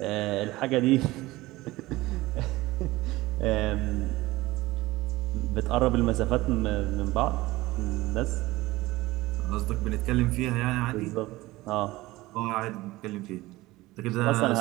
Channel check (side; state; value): left; quieter; 19.0 dB